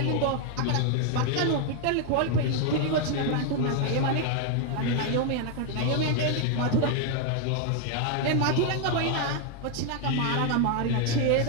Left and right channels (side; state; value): both; different; correlation 0.00